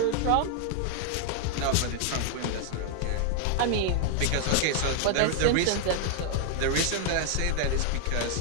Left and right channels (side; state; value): both; different; correlation 0.00